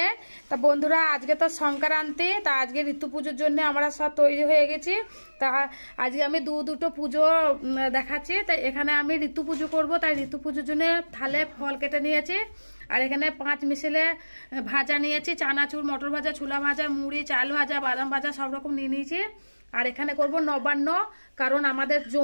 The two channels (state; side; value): inverted; both; correlation -1.00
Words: তা বন্ধুরা, আজকে তো সংক্রান্তি, তা আজকে ঋতু পুজোর জন্য আমরা সব তৈরি হয়ে গেছি। তা আজকে আমি দুটো পুজো দেখাচ্ছি। তাই এখানে আমি ঋতু পুজো করবো, তাই ঋতু পুজোর জন্য থালে ফল কেটে নিয়েছি। আর এখানে 5 মিশালে ভাজা নিয়েছি, চানাচুর, মটর ভাজা, ছোলা ভাজা, মুড়ি, চাল ভাজা, বাদাম ভাজা সব রকম নিয়ে নিয়েছি। আর এখানে করব নবান্ন, কারণ আমাদের